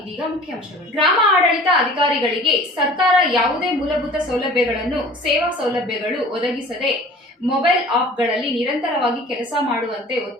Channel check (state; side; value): normal; both; correlation 0.45